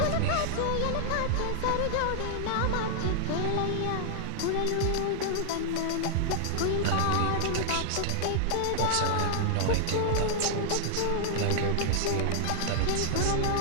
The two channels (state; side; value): different; both; correlation -0.01